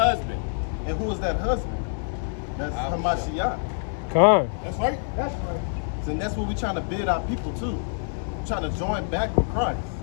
And who is that husband? That's Hamashiach. Come on. That's right. That's right. And that's what we're trying to bid our people to. We're trying to join back with Christ.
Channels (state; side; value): silent; right; digital silence